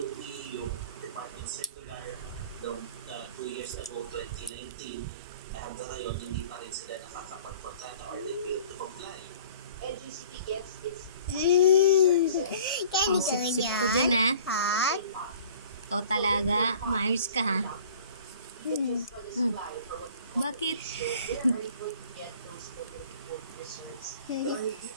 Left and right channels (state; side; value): inverted; both; correlation -0.49